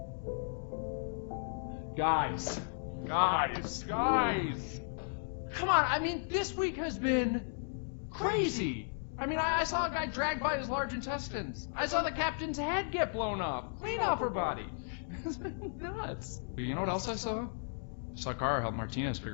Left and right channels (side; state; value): right; silent; digital silence